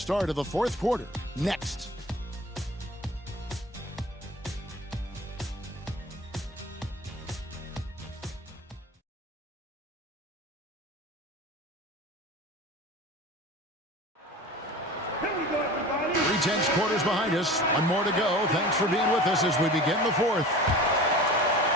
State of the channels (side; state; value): both; normal; correlation 0.37